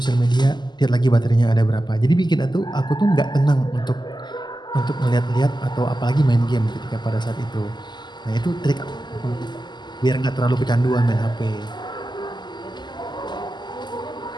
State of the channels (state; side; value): late; right; 0.21 ms